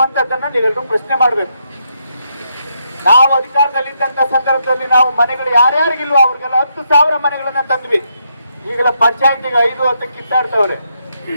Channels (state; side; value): inverted; both; correlation -0.79